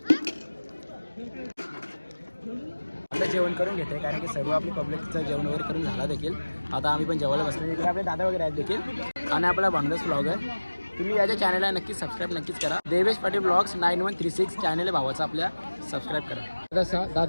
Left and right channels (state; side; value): inverted; both; correlation -1.00